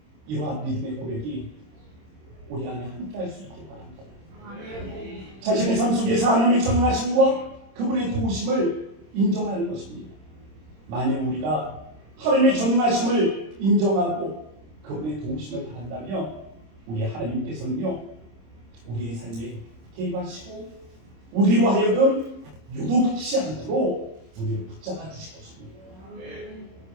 이러한 믿음의 고백이 우리 안에 함께 할 수 있길 바랍니다. 자신의 삶 속에서 하나님의 전능하심과 그분의 도우심을 인정하는 것입니다. 만약 우리가 하나님의 전능하심을 인정하고 그분의 도우심을 바란다면 우리 하나님께서는요 우리의 삶에 개입하시고 우리로 하여금 요동치 않도록 우리를 붙잡아 주실 것입니다.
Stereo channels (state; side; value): late; left; 26 ms